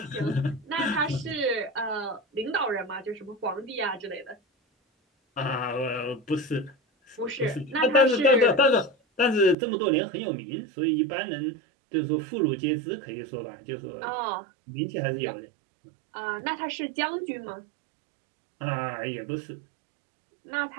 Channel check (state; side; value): drops out; left; at 9.6 s